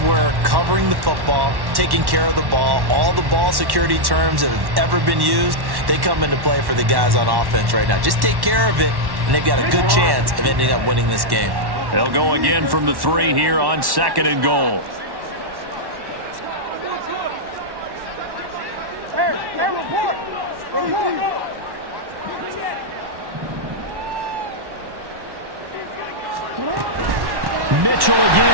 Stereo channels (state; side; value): late; left; 1.1 ms